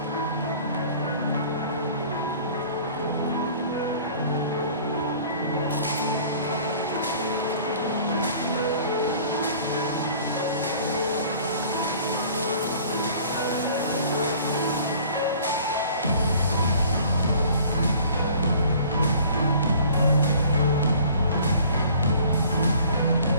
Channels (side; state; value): both; inverted; correlation -0.50